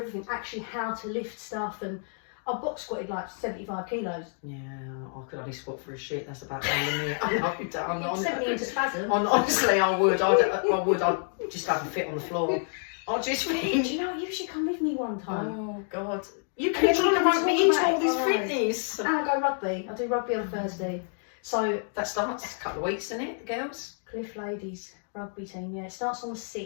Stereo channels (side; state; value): right; silent; 59 dB below the other